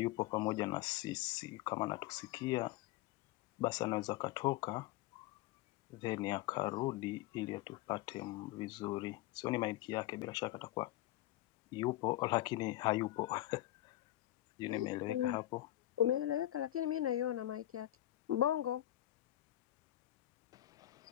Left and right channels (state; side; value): quieter; right; 14.9 dB